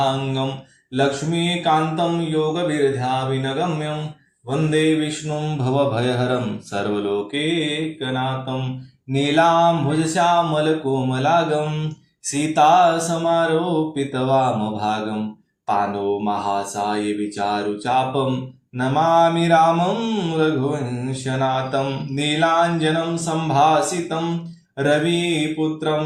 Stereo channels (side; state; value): both; identical; correlation 1.00